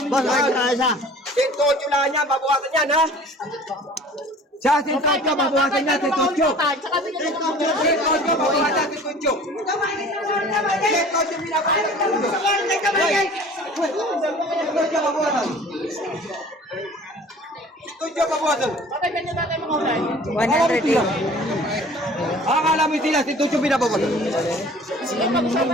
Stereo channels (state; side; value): normal; both; correlation 0.46